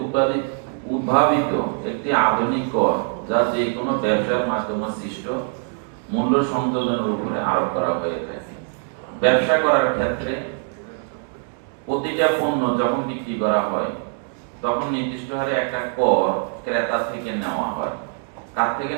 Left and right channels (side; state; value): left; silent; 59 dB below the other